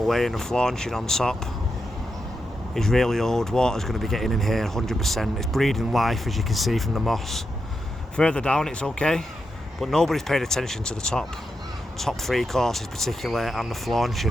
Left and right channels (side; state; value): both; normal; correlation 0.86